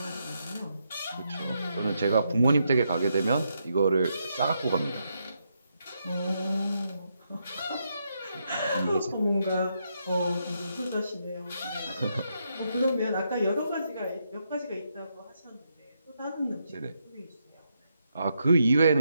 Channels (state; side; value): inverted; both; correlation -0.80